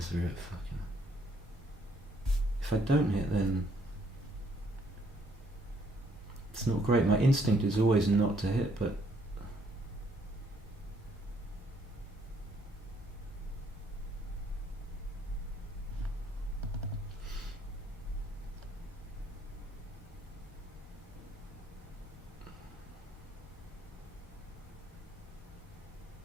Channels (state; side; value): normal; both; correlation 0.68